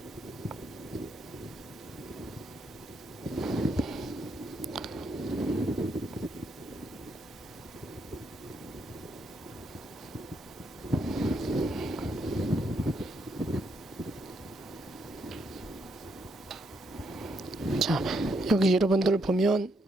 자, 여기 여러분들 보면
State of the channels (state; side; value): normal; both; correlation 0.76